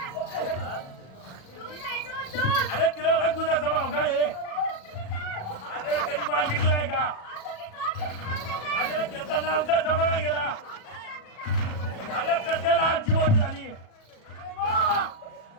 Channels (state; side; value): late; right; 37 ms